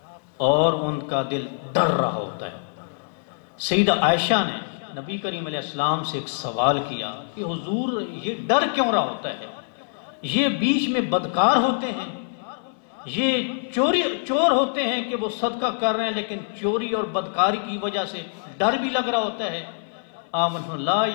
اور ان کا دل ڈر رہا ہوتا ہے. سیدہ عائشہ نے نبی کریم علیہ السلام سے ایک سوال کیا کہ حضور یہ ڈر کیوں رہا ہوتا ہے؟ یہ بیچ میں بدکار ہوتے ہیں، یہ چور ہوتے ہیں کہ وہ صدقہ کر رہے ہیں لیکن چوری اور بدکاری کی وجہ سے ڈر بھی لگ رہا ہوتا ہے. آمن لا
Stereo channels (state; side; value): silent; right; digital silence